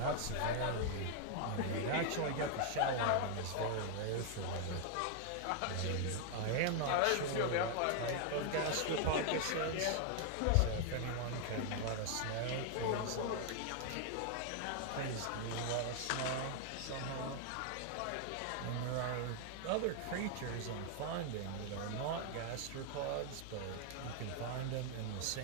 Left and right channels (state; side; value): different; both; correlation 0.00